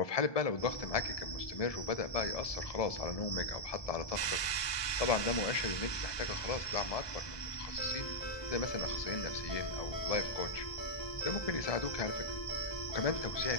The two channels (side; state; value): right; late; 1.2 ms